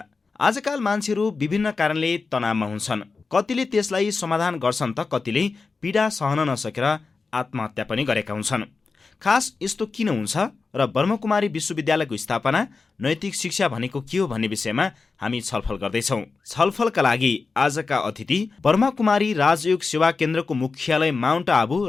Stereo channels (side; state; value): right; quieter; 4.4 dB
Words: आजकाल मान्छेहरू विभिन्न कारणले तनावमा हुन्छन्। कतिले त्यसलाई समाधान गर्छन् त कतिले पीडा सहन नसकेर आत्महत्या पनि गरेका हुन्छन्। खास यस्तो किन हुन्छ र ब्रह्मकुमारी विश्वविद्यालयको स्थापना, नैतिक शिक्षा भनेको के हो भन्ने विषयमा हामी छलफल गर्दैछौँ। छलफलका लागि आजका अतिथि ब्रह्मकुमारी राजयोग सेवा केन्द्रको मुख्यालय माउन्ट आबु,